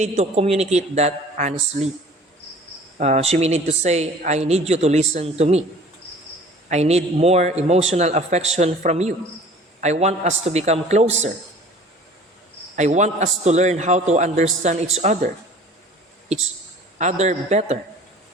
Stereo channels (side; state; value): both; normal; correlation 0.48